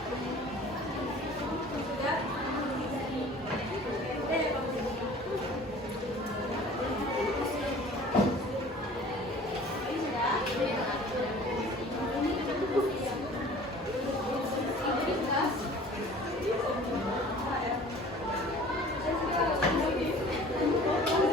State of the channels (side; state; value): both; normal; correlation 0.47